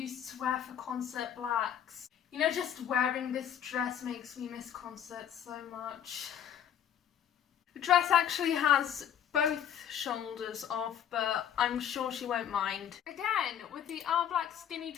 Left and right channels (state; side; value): quieter; right; 9.5 dB